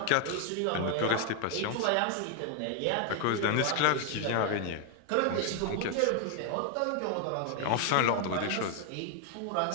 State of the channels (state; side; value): different; both; correlation 0.01